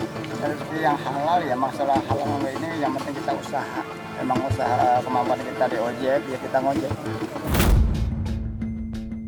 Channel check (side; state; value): both; identical; correlation 1.00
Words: Nyari rezeki yang halal ya, masalah halal enggak ini yang penting kita usaha. Emang usaha kemampuan kita di ojek, ya kita ngojek.